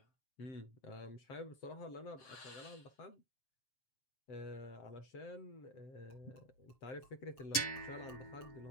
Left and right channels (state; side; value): late; right; 7.6 ms